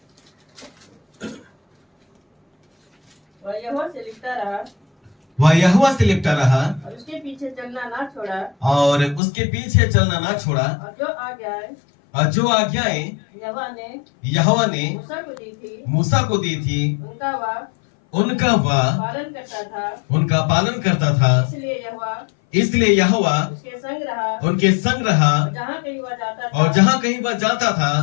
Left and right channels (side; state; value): right; drops out; at 9.2 s